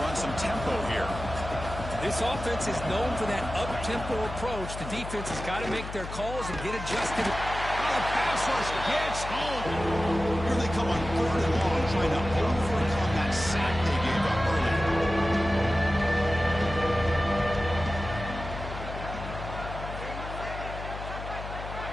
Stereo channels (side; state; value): left; noise; hum, 9 dB below the sound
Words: run some tempo here. This offense is known for that up-tempo approach. The defense has got to make their calls and get adjusted. Oh, the pass rush gets home. Here they come on 3rd and long, trying to overcome that sack they gave up earlier.